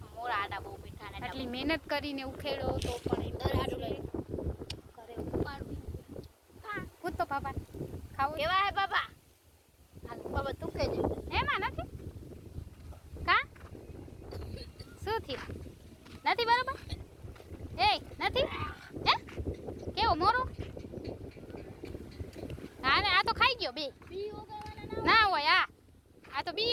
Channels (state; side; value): identical; both; correlation 1.00